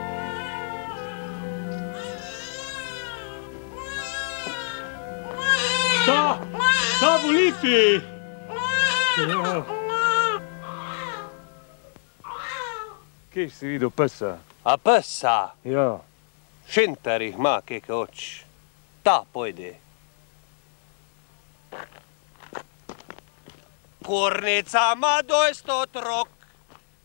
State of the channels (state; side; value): silent; right; digital silence